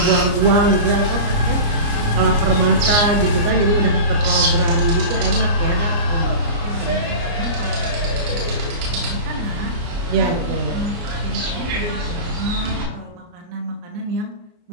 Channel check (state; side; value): late; left; 29 ms